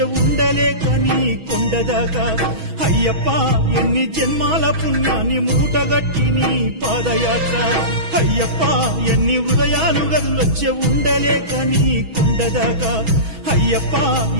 ఉండలేక నీ కొండదాకా అయ్యప్ప ఎన్ని జన్మాల పుణ్యాన్ని మూటగట్టి నీ పాదయాత్ర అయ్యప్ప ఎన్ని హృదయాలు గదులొచ్చే ఉండలేక నీ కొండదాకా అయ్యప్ప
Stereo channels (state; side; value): late; left; 6.2 ms